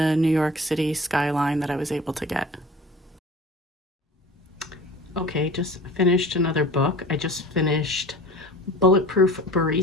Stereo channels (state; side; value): normal; both; correlation 0.42